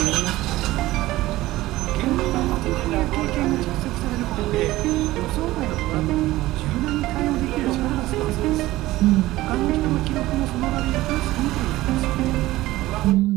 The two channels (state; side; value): quieter; left; 17.2 dB